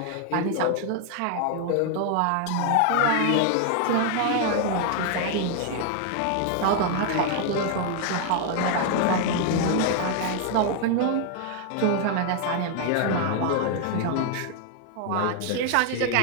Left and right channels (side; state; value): both; different; correlation 0.00